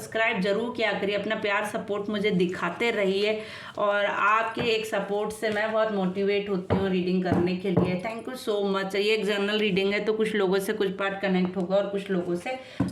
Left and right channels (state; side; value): identical; both; correlation 1.00